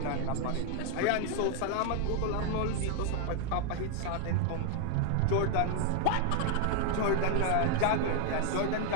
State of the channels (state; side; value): different; both; correlation 0.00